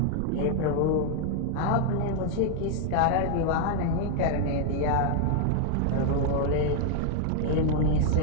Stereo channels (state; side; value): different; both; correlation 0.00